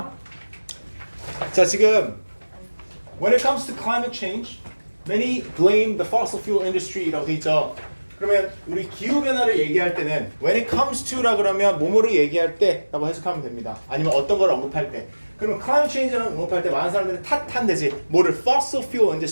자, 지금 When it comes to climate change, many blame the fossil fuel industry라고 돼 있죠. 그러면 우리 기후변화를 얘기할 때는 when it comes to라 그러면 뭐뭐를 얘기할 때라고 해석하면 됩니다. 아니면 어떤 걸 언급할 때. 그러면 climate change를 언급할 때 많은 사람들은 탓한대지. 뭐를 fossil fuel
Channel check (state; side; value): inverted; both; correlation -1.00